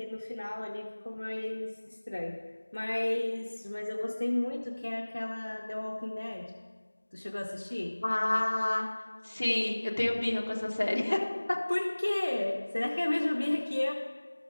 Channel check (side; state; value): both; inverted; correlation -1.00